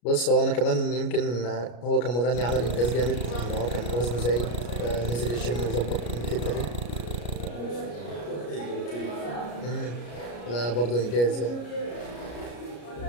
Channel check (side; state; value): right; late; 33 ms